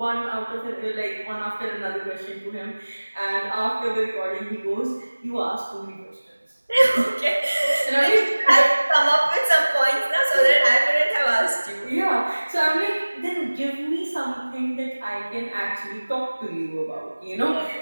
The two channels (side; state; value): both; inverted; correlation -1.00